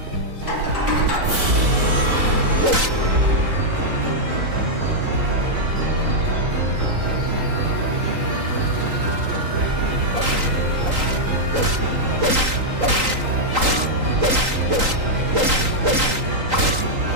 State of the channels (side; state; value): left; late; 3.8 ms